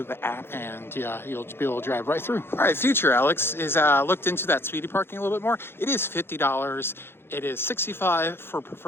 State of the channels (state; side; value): late; right; 0.11 ms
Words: the app and you'll be able to drive right through. All right, Future Alex is looked into that Speedy Parking a little bit more. It is $50. It is $65 for